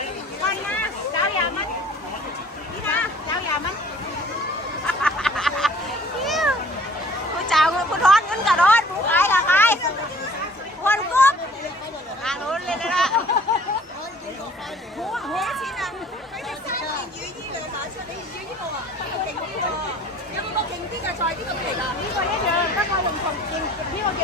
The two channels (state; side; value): normal; both; correlation 0.52